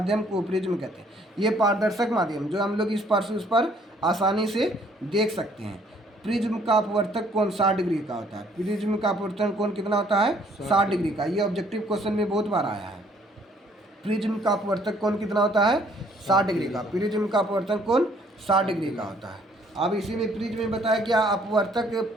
को प्रिज्म कहते हैं। ये पारदर्शक माध्यम जो हम लोग इस पार से उस पर आसानी से देख सकते हैं। प्रिज्म का अपवर्तक कोण 60 डिग्री का होता है। प्रिज्म का अपवर्तन कोण कितना होता है, 60 डिग्री का। ये ऑब्जेक्टिव क्वेश्चन में बहुत बार आया है। प्रिज्म का अपवर्तक कोण कितना होता है, 60 डिग्री का। प्रिज्म का अपवर्तन कोण 60 डिग्री का होता है। अब इसी में प्रिज्म में बताया क्या, अपवर्तक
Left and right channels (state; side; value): normal; both; correlation 0.62